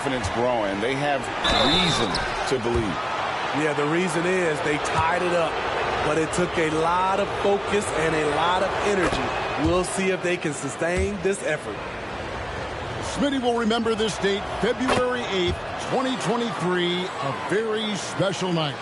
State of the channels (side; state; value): both; identical; correlation 1.00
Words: growing. They have reason to believe. Yeah, the reason is they tied it up, but it took a lot of focus and a lot of energy. We'll see if they can sustain this effort. Smitty will remember this date, February 8th, 2023, a very special night.